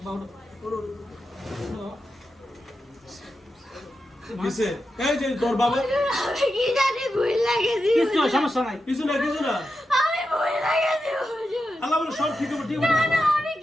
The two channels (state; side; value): normal; both; correlation 0.89